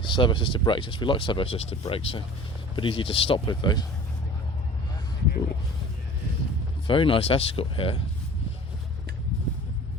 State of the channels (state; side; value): normal; both; correlation 0.43